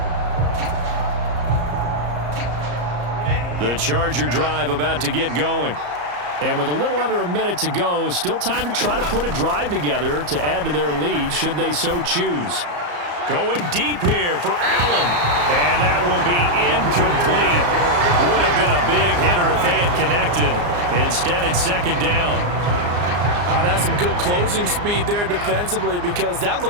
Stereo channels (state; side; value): late; left; 34 ms